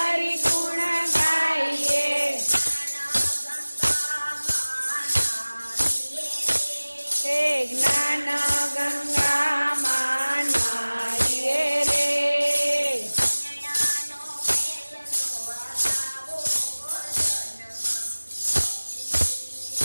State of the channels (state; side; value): inverted; both; correlation -1.00